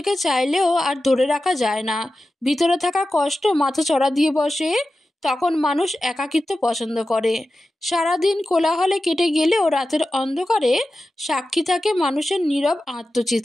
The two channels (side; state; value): both; normal; correlation 0.93